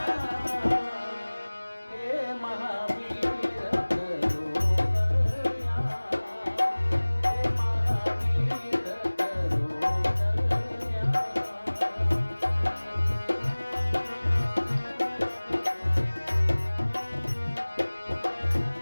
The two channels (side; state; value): both; inverted; correlation -1.00